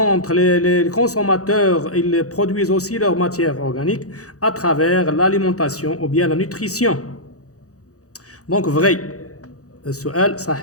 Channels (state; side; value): late; right; 0.66 ms